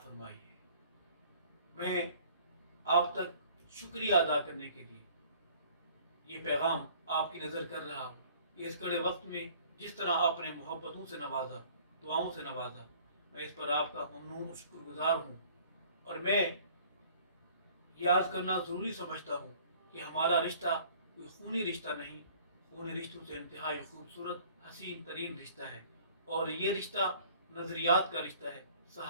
है। मैं आप तक शुक्रिया अदा करने के लिए ये पैगाम आपकी नज़र कर रहा हूँ कि इस कड़े वक्त में जिस तरह आपने मोहब्बतों से नवाजा, दुआओं से नवाजा, मैं इस पर आपका ममनून और शुक्रगुजार हूँ। और मैं याद करना ज़रूरी समझता हूँ कि हमारा रिश्ता कोई खूनी रिश्ता नहीं, खूनी रिश्तों से इंतहाई खूबसूरत हसीन तरीन रिश्ता है। और ये रिश्ता नज़रियात का रिश्ता है,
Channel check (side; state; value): both; inverted; correlation -0.53